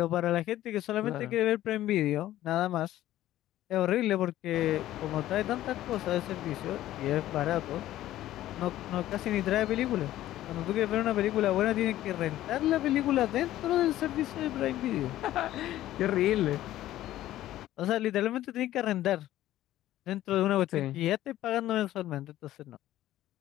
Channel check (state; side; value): quieter; right; 14.1 dB